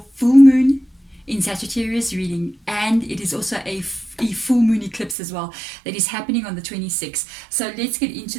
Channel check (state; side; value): drops out; left; at 5.2 s